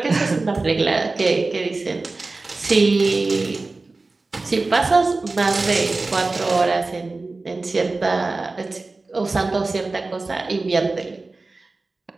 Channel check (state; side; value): quieter; left; 3.5 dB